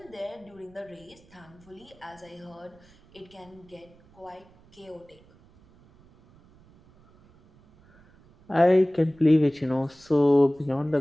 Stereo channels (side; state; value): right; noise; rumble, 28 dB below the sound